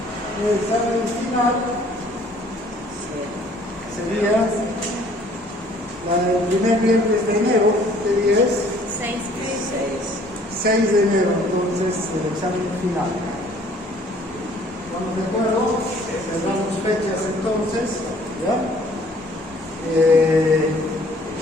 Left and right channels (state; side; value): normal; both; correlation 0.57